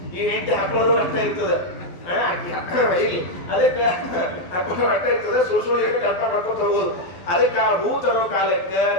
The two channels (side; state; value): right; late; 12 ms